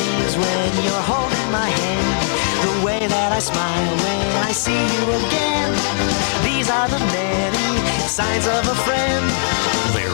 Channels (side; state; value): right; silent; digital silence